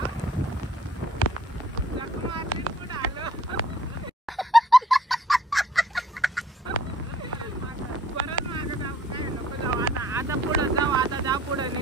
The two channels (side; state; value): both; normal; correlation 0.58